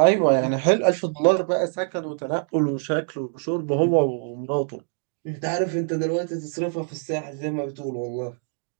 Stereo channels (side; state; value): left; silent; 56 dB below the other